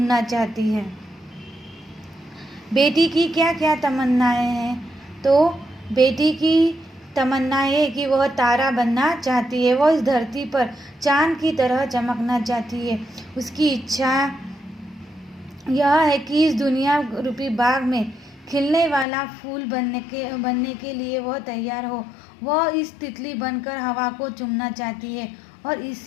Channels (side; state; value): right; drops out; at 19.1 s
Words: चाहती है। बेटी की क्या क्या तमन्नाएं हैं? तो बेटी की तमन्ना है कि वह तारा बनना चाहती है। वह इस धरती पर चांद की तरह चमकना चाहती है। उसकी इच्छा यह है कि इस दुनिया रूपी बाग में खिलने वाला फूल बनने के लिए वह तैयार हो। वह इस तितली बनकर हवा को चूमना चाहती है। और